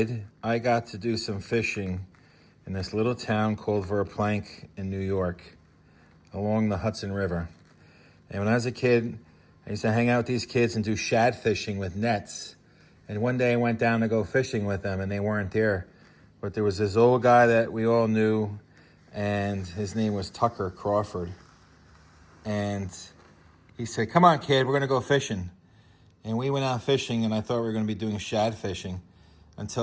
I got to do some fishing in this little town called Verplank in New York, along the Hudson River. And when I was a kid, I used to hang out with these kids and do shad fishing with nets. And one day I went down to go fishing with them, and they weren't there. But there was this old guy that we all knew, and his name was Tucker Crawford. And he said, "Come on, kid, we're going to go fishing." And we went out fishing, and I thought we were going to be doing shad fishing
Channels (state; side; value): identical; both; correlation 1.00